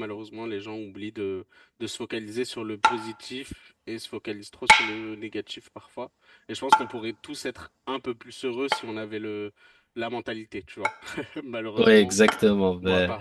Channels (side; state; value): both; identical; correlation 1.00